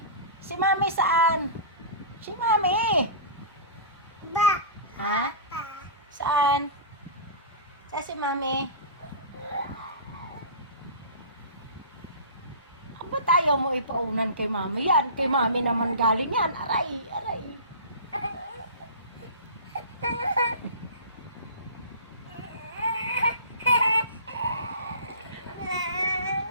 Si Mami saan? Si Mami? Ha? Saan? Saan si Mami? Ba't tayo mo ipaunan kay Mami yan? Kay Mami naman galing yan. Aray, aray.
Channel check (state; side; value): inverted; both; correlation -0.34